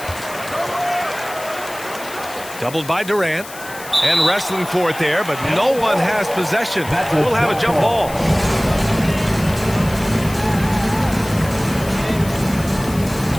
Doubled by Durant. And wrestling for it there, but no one has possession. We'll have a jump ball.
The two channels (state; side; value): noise; left; hiss, 15 dB below the sound